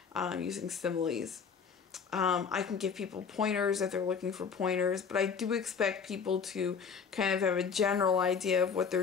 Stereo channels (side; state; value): right; quieter; 6.2 dB